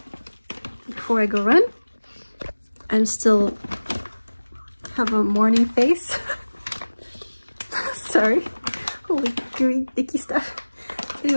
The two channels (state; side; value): inverted; both; correlation -1.00